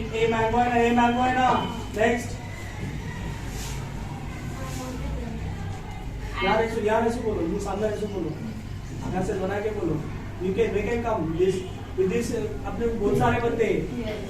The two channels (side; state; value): both; identical; correlation 1.00